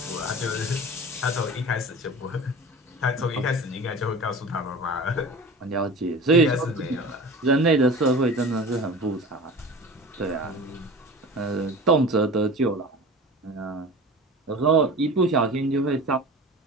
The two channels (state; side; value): normal; both; correlation 0.36